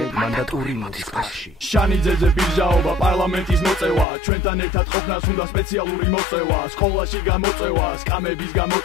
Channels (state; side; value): drops out; right; at 4.0 s